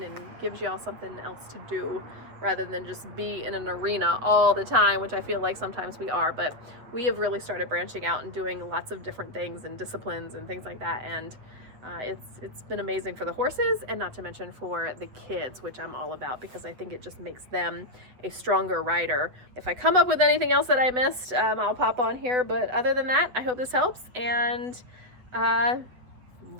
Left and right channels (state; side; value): late; left; 8.1 ms